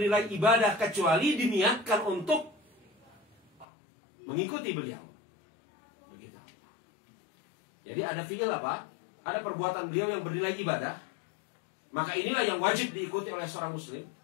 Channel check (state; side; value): drops out; right; at 3.7 s